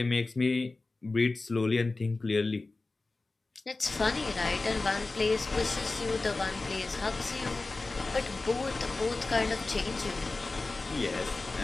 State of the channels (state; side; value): quieter; right; 3.4 dB